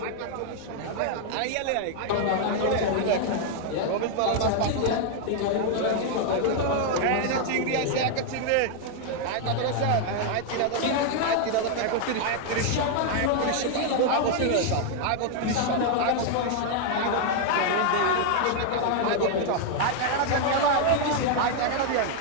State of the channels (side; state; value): both; different; correlation 0.00